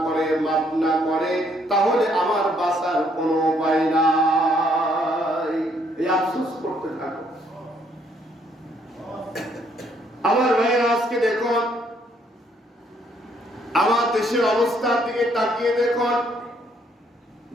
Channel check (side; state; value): both; normal; correlation 0.68